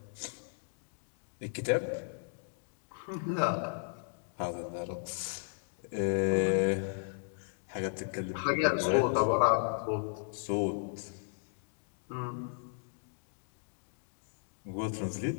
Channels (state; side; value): silent; right; digital silence